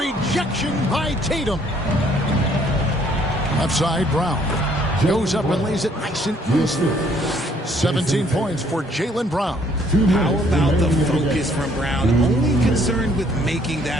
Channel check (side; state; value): both; normal; correlation 0.63